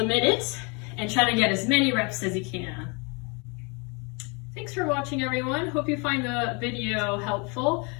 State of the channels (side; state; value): right; quieter; 31.8 dB